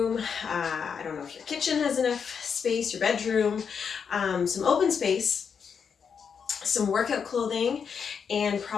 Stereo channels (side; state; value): right; quieter; 6.6 dB